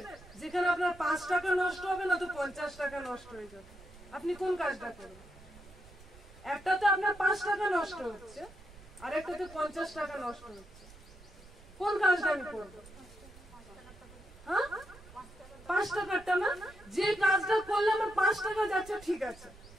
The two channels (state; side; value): noise; right; rumble, 21 dB below the sound